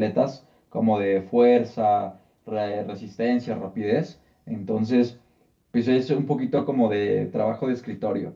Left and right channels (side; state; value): both; identical; correlation 1.00